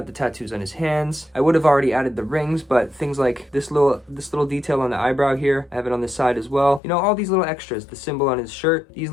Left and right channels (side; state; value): right; drops out; at 6.8 s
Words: the tattoos on his hands. I would have already added the rings, but things like this little detail on the eyebrow here, I have it on the side as well. You know, all these little extras, the symbol on his shirt, these